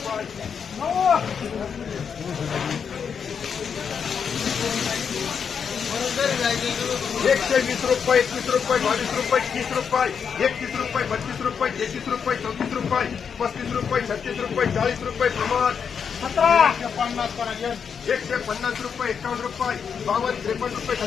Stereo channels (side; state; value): right; quieter; 6.8 dB